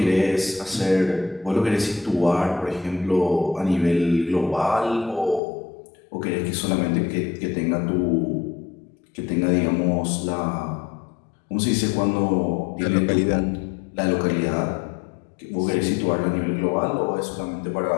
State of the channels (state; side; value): drops out; right; at 5.4 s